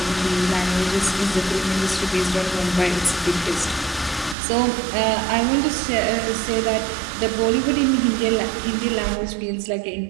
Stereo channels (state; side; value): drops out; left; at 4.4 s